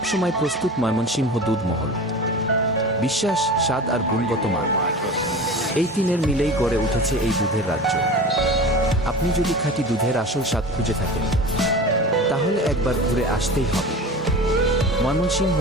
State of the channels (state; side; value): normal; both; correlation 0.34